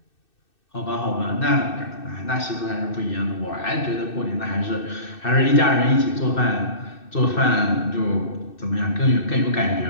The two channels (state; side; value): late; right; 2.6 ms